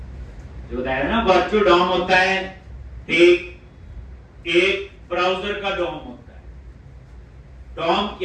जो बताया ना वर्चुअल डॉम होता है, एक ब्राउजर का डॉम होता है। डॉम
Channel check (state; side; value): identical; both; correlation 1.00